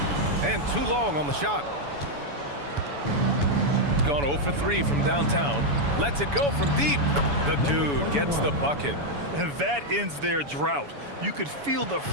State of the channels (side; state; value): left; late; 7.0 ms